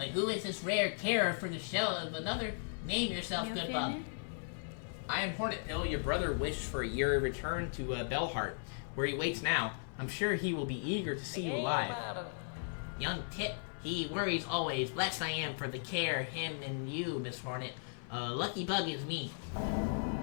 who is this rare carer for the shell of another? Name yourself, good bug. I am Hornet Pill. Your brother wished for your return to Bellheart, where he waits now. I'm sure he will be eager to see you alive. Young Tit, he worries always. Blessed I am for the care, him and you, Miss Hornet. Lucky bug is me.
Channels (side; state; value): right; silent; digital silence